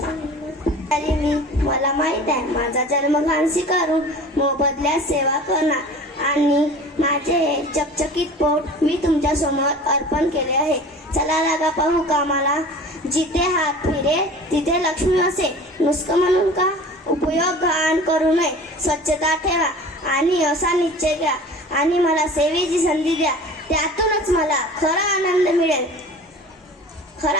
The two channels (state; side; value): normal; both; correlation 0.41